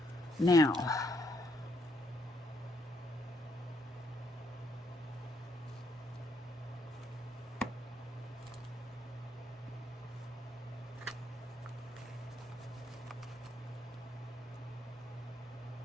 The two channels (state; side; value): normal; both; correlation 0.73